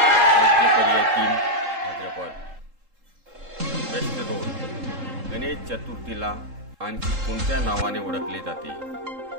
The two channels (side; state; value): left; late; 3.7 ms